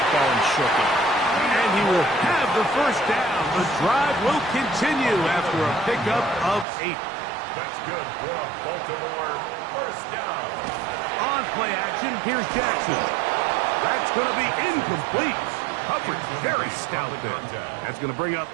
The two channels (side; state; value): left; drops out; at 6.7 s